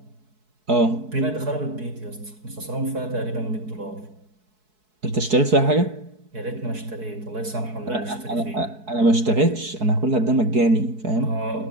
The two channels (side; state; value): left; late; 4.7 ms